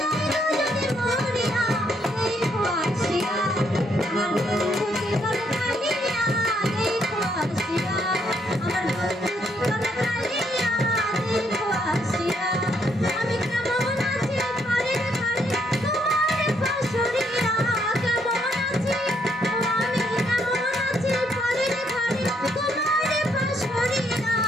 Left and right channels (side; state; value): both; normal; correlation 0.72